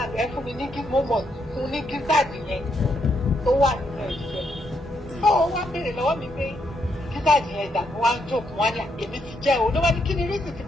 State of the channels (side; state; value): both; normal; correlation 0.77